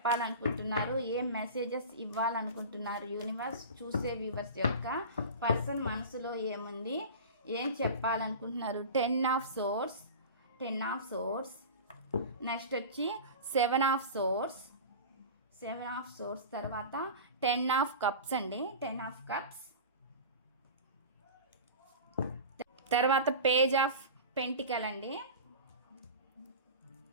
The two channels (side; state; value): both; inverted; correlation -0.32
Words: ఏం మెసేజెస్ ఇవ్వాలనుకుంటున్నారు యూనివర్స్. చూసే వ్యూవర్స్ యొక్క పర్సన్ మనసులో ఏముంది, ఏం చెప్పాలనుకుంటున్నారు. 10 of swords. 10 of swords. Next వచ్చి 7 ఆఫ్ సోర్స్. 7 ఆఫ్ సోర్స్ తర్వాత 10 ఆఫ్ కప్స్ అండి. 10 ఆఫ్ కప్స్. తర్వాత పేజ్ ఆఫ్ పెంటికల్ అండి.